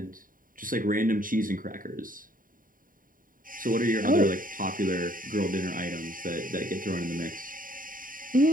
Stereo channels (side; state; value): left; late; 0.40 ms